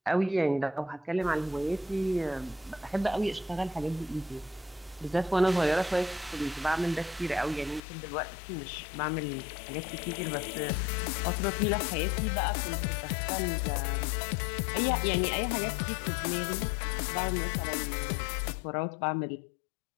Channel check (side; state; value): right; drops out; at 7.8 s